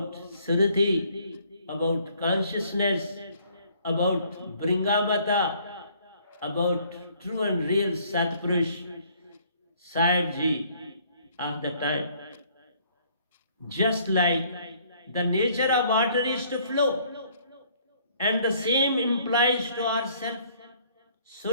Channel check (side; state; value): both; inverted; correlation -0.62